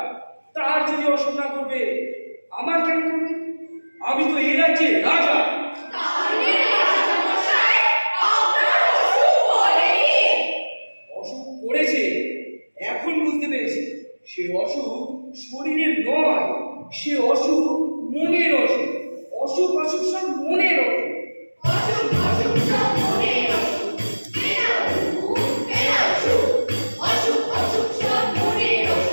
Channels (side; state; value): both; inverted; correlation -1.00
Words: তার যদি অসুখ না করবে, আমার কেন করবে? আমি তো এই রাজ্যে রাজা। তাহলে রাজামশাই আপনার অসুখ করেনি? অসুখ করেছে, এখন বুঝতে পেরেছি। সে অসুখ শরীরের নয়, সে অসুখ মনের অসুখ। অসুখ অসুখ সব মনের অসুখ। অসুখ অসুখ সব মনের অসুখ। ফেরাও সুখ, ফেরাও সুখ। অসুখ অসুখ সব মনের